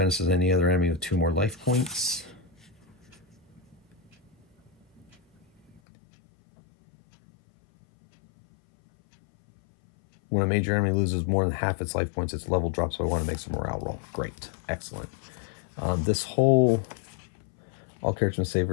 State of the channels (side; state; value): right; drops out; at 5.8 s